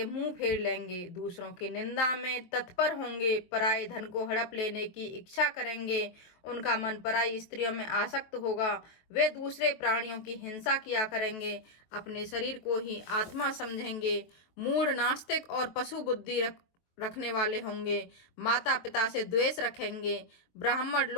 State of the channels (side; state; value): right; late; 23 ms